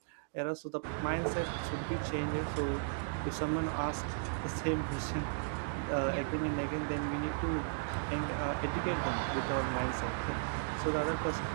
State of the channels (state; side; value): silent; left; digital silence